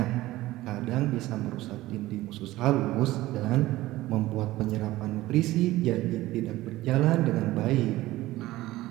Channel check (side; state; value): left; quieter; 17.0 dB